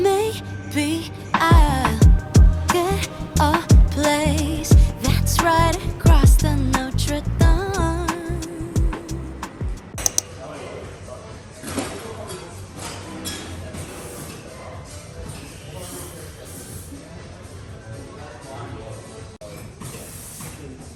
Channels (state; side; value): identical; both; correlation 1.00